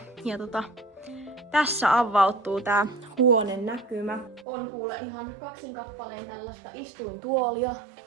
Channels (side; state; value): left; drops out; at 4.5 s